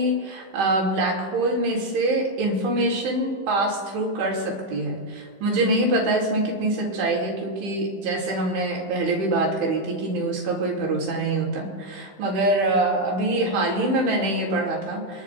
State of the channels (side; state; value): left; late; 15 ms